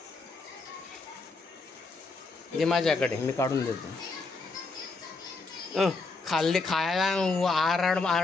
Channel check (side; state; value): right; quieter; 3.8 dB